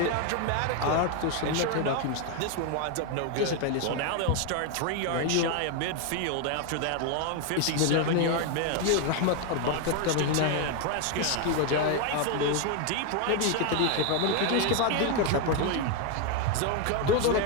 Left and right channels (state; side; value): different; both; correlation 0.01